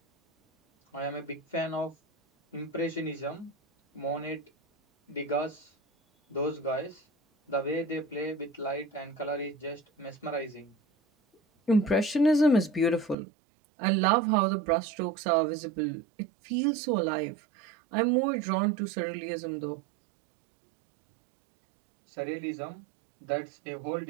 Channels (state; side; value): drops out; left; at 13.2 s